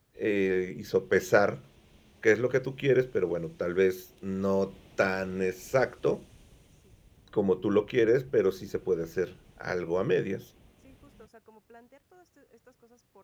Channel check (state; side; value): identical; both; correlation 1.00